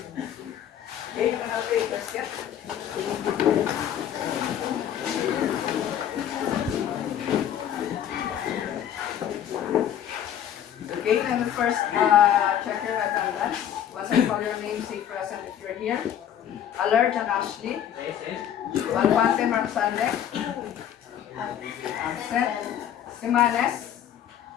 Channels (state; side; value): quieter; right; 10.1 dB